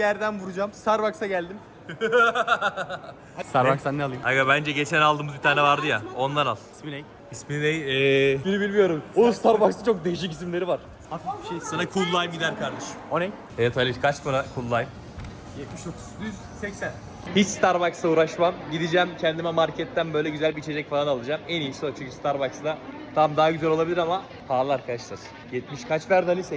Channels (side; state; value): both; identical; correlation 1.00